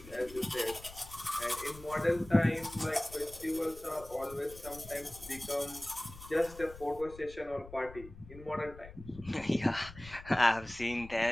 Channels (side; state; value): left; noise; rumble, 17 dB below the sound